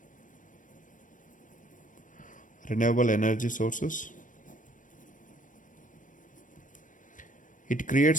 renewable energy sources. It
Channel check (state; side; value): late; right; 0.38 ms